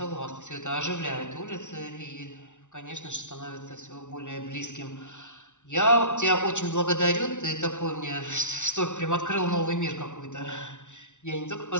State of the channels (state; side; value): late; right; 0.85 ms